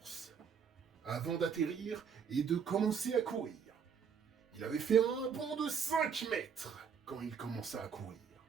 avant d'atterrir et de commencer à courir. Il avait fait un bond de 5 mètres quand il commença à courir.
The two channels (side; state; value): left; quieter; 6.8 dB